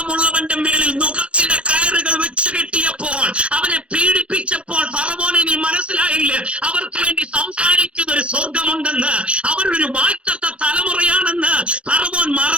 മേളിൽ നുഖത്തിന്റെ കയറുകൾ വെച്ച് കെട്ടിയപ്പോൾ, അവനെ പീഡിപ്പിച്ചപ്പോൾ ഫറവോനെ നീ മനസ്സിലായില്ല അവർക്ക് വേണ്ടി സംസാരിക്കുന്ന ഒരു സ്വർഗമുണ്ടെന്ന്, അവരൊരു വാഴ്ത്തത്ത തലമുറയാണെന്ന് ഫറവോൻ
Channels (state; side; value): late; left; 0.061 ms